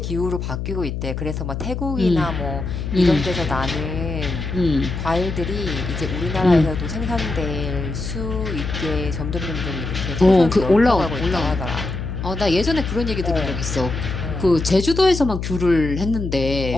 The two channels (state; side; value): noise; left; hum, 4 dB below the sound